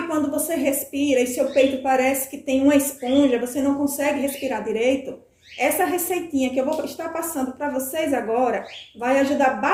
quando você respira e seu peito parece que tem uma esponja, você não consegue respirar direito? Essa receitinha que eu vou estar passando para vocês agora vai ajudar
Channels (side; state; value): both; identical; correlation 1.00